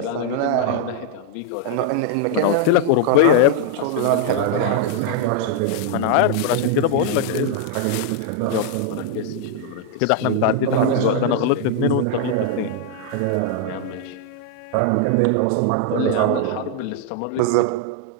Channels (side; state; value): both; different; correlation 0.00